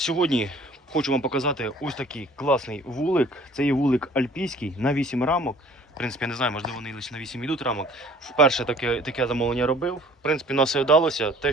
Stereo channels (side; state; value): both; normal; correlation 0.52